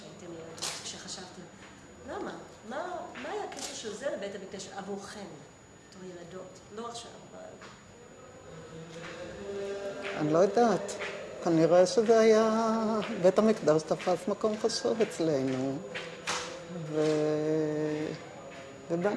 ילדות, כשחשבתם, למה? מה היה הקשר של זה לבית המקדש עבורכם, בתור ילדות? לא עכשיו, אבל... אני לא יודעת. כנראה שזה היה... בית המקדש תפס מקום חשוב אצלנו.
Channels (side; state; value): both; identical; correlation 1.00